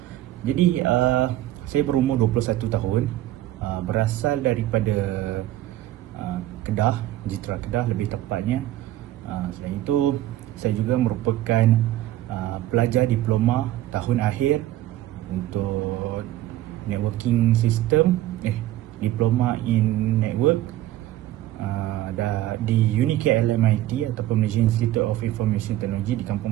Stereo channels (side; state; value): left; quieter; 14.6 dB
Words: Jadi saya berumur 21 tahun, berasal daripada Kedah, Jitra Kedah lebih tepatnya. Saya juga merupakan pelajar diploma tahun akhir untuk networking system, diploma in network di UniKLMIT ataupun Malaysia Institute of Information Technology di Kampung